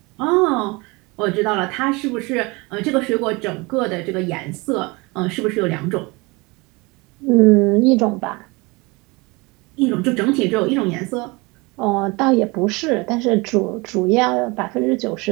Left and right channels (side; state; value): left; quieter; 25.7 dB